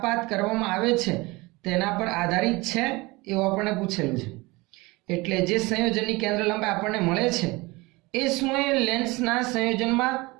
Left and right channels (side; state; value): left; quieter; 23.1 dB